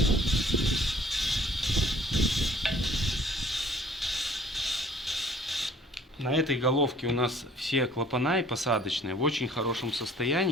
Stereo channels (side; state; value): both; normal; correlation 0.55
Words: На этой головке у нас все клапана и посадочные в очень хорошем